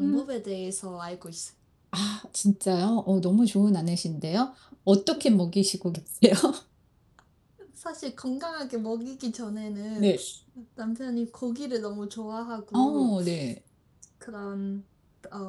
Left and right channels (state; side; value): identical; both; correlation 1.00